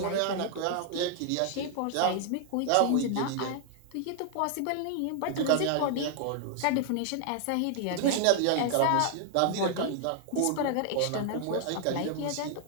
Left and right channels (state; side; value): different; both; correlation 0.00